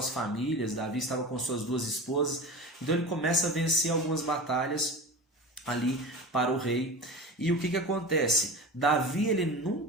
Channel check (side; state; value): both; normal; correlation 0.31